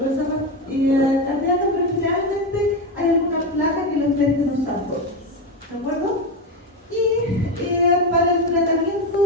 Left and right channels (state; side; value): normal; both; correlation 0.15